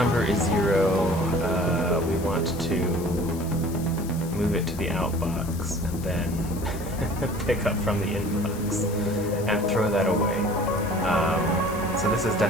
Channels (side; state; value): left; noise; hiss, 16 dB below the sound